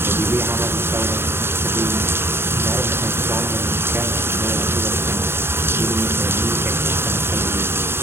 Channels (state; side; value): late; left; 0.12 ms